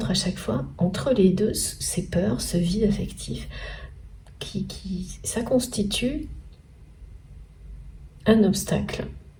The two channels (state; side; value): identical; both; correlation 1.00